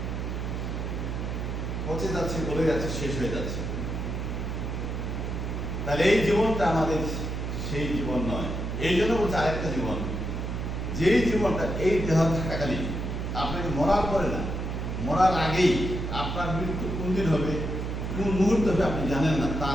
পচে যাচ্ছে, গলে যাচ্ছে, শেষ হয়ে যাচ্ছে। তাহলে এই জীবনটা আমাদের সেই জীবন নয়। এই জন্য বলছে আরেকটা জীবন, যেই জীবনটা এই দেহ থাকাকালীন, আপনাকে মরার পরে না, মরার আগেই, আপনার মৃত্যু কোন দিন হবে, কোন মুহূর্ত হবে আপনি জানেন না,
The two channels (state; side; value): noise; right; hum, 3 dB below the sound